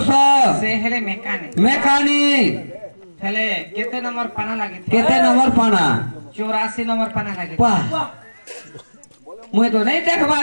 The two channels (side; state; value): both; inverted; correlation -1.00